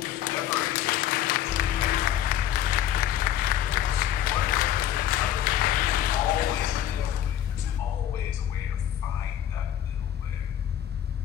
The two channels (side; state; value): right; quieter; 10.9 dB